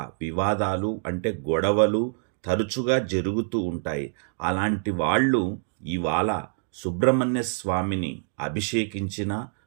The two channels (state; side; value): silent; left; digital silence